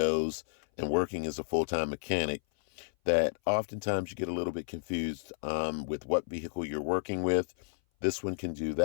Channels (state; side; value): silent; right; 57 dB below the other